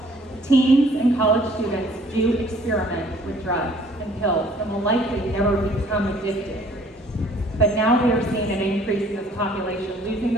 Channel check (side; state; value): both; normal; correlation 0.57